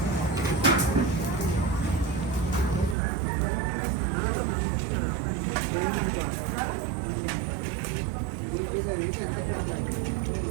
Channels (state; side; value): drops out; left; at 3.0 s